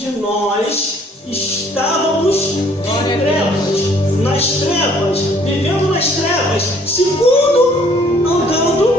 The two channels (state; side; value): normal; both; correlation 0.60